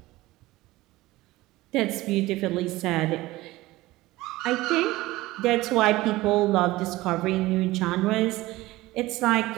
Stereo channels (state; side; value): quieter; left; 18.6 dB